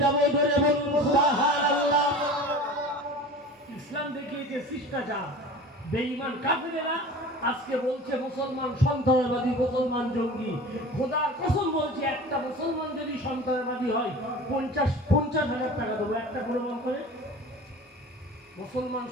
যাব। ধরে বলুন সুবহানাল্লাহ। ইসলাম দেখিয়েছে শিষ্টাচার। বেঈমান কাফেরেরা আজকে বলছে মুসলমান সন্ত্রাসবাদী, মুসলমান জঙ্গি। খোদার কসম বলছি, একটা মুসলমান যদি সন্ত্রাসবাদী হয় 50,000 টাকা দেবো, একটা প্রমাণ করে। মুসলমান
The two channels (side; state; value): both; normal; correlation 0.38